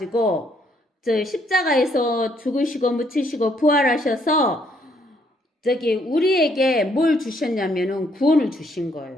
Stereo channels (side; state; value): both; normal; correlation 0.69